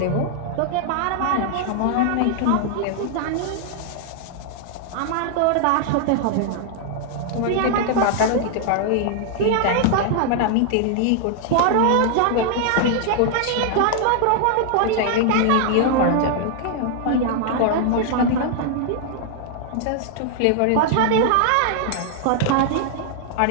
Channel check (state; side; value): different; both; correlation 0.00